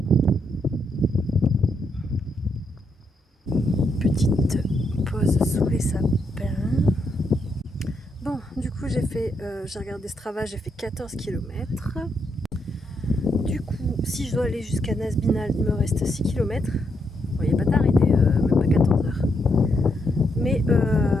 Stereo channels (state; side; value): normal; both; correlation 0.79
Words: Petite pause sous les sapins. Bon, du coup j'ai regardé Strava, j'ai fait 14 km. Du coup, si je dois aller jusqu'à Nasbinal, il me reste 6 km. Bon, il n'est pas tard, il est même pas 14 heures. Mais